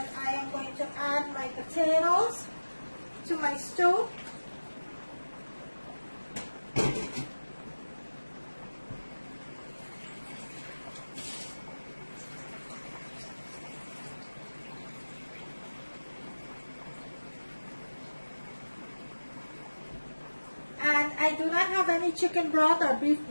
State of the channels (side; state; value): both; inverted; correlation -1.00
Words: I am going to add my potatoes to my stew. And I do not have any chicken broth or beef